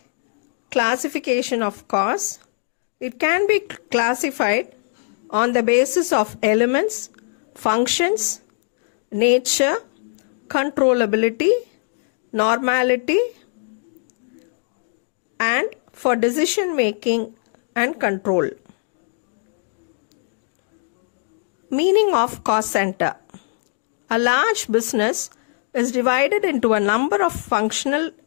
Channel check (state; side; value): silent; right; digital silence